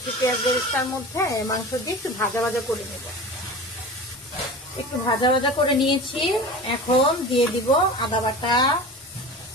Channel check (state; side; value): normal; both; correlation 0.33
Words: পেঁয়াজ বেরেস্তার মধ্যে মাংস দিয়ে একটু ভাজা ভাজা করে নেব। একটু ভাজা ভাজা করে নিয়েছি। এখন দিয়ে দিব আদা বাটা,